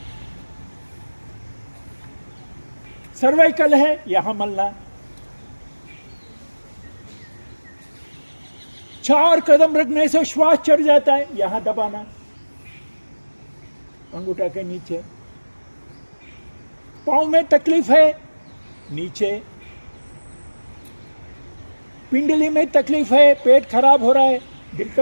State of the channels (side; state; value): both; inverted; correlation -1.00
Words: सर्वाइकल है, यहां मलना। 4 कदम रखने से श्वास चढ़ जाता है, यहां दबाना अंगूठा के नीचे। पांव में तकलीफ है, नीचे। पिंडली में तकलीफ है, पेट खराब हो रहा है, दिल